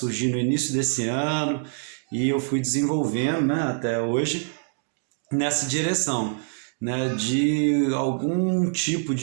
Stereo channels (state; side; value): silent; left; digital silence